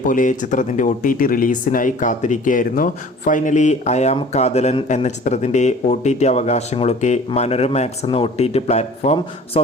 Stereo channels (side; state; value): both; normal; correlation 0.47